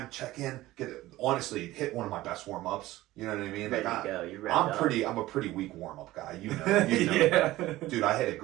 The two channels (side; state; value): left; quieter; 16.9 dB